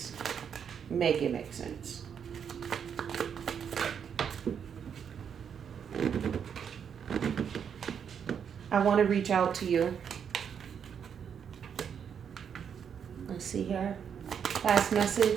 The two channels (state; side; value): quieter; left; 7.6 dB